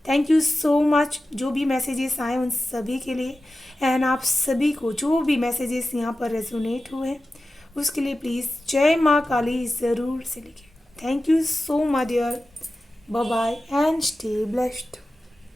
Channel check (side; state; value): both; normal; correlation 0.94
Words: थैंक यू सो मच जो भी मैसेजेस आए उन सभी के लिए। एंड आप सभी को जो भी मैसेजेस यहाँ पर रेजोनेट हुए हैं उसके लिए प्लीज़ जय माँ काली ज़रूर से लिखें। Thank you so much dear, bye bye and stay blessed.